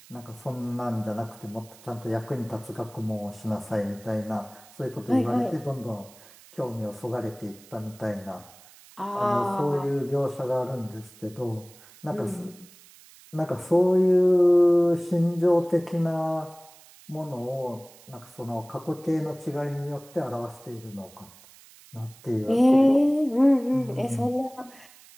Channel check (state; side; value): noise; right; hiss, 23 dB below the sound